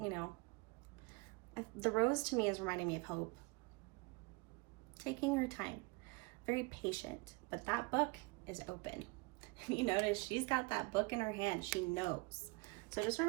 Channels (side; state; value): left; quieter; 26.7 dB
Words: You know, the rose to me is reminding me of hope. Taking her time, very patient, but that book is open. You notice she's got that book in her hand. She knows. So just